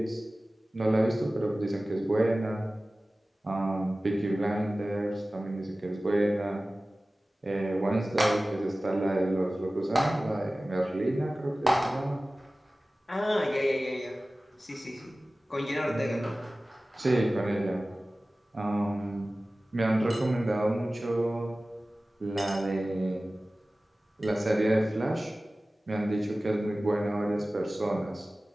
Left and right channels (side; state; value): both; normal; correlation 0.97